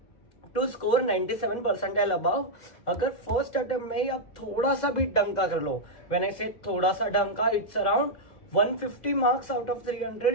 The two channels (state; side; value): late; right; 2.0 ms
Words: टू स्कोर 97 परसेंटाइल अबाव. अगर फर्स्ट अटेम्प्ट में ही आप थोड़ा सा भी डंका कर लो, व्हेन आई से थोड़ा सा डंका, it's around 150 marks out of